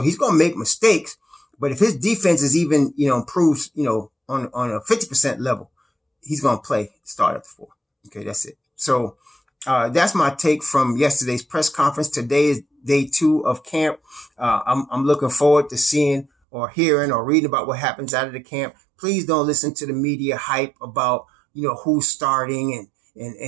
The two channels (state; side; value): drops out; left; at 16.3 s